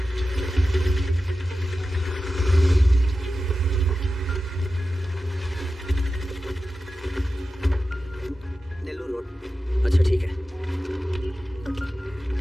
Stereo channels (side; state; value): both; normal; correlation 0.93